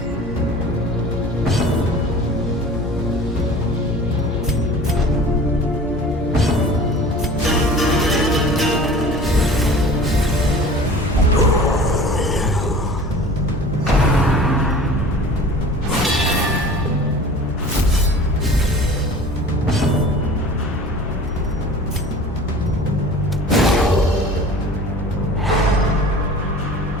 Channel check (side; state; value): both; normal; correlation 0.42